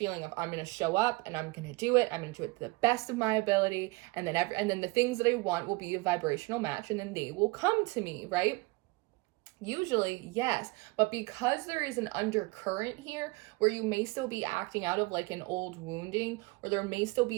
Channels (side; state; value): left; quieter; 24.5 dB